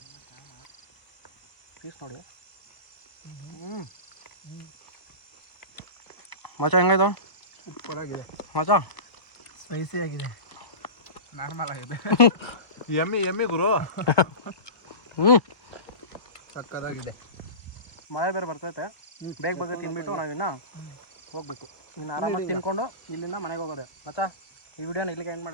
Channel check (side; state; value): right; late; 1.2 ms